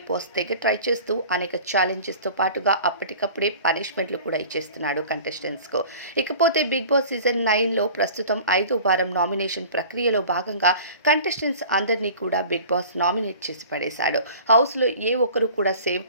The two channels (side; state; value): both; inverted; correlation -0.43